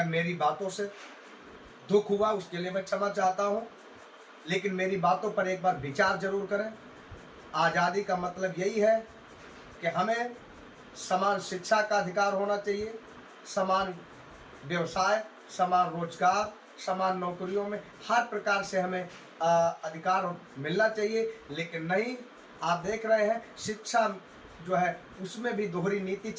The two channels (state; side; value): identical; both; correlation 1.00